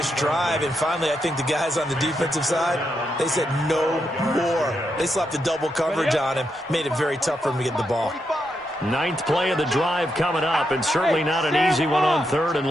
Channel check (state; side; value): normal; both; correlation 0.82